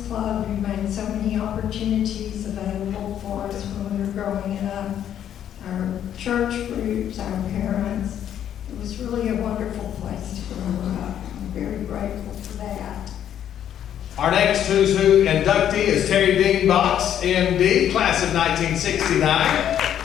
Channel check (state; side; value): quieter; right; 10.1 dB